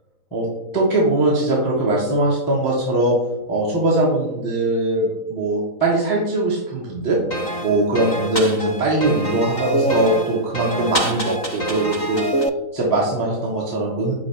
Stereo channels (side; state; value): right; late; 3.9 ms